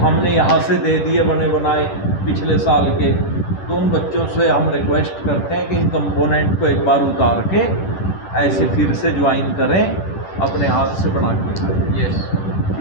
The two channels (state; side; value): late; right; 10 ms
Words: यहाँ से दे दिए बने बनाए पिछले साल के, तो उन बच्चों से हम रिक्वेस्ट करते हैं कि इन कंपोनेंट को एक बार उतार के ऐसे फिर से ज्वाइन करें, अपने हाथ से बना के। यस